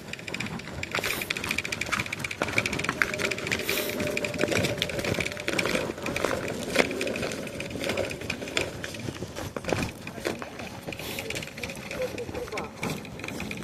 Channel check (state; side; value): identical; both; correlation 1.00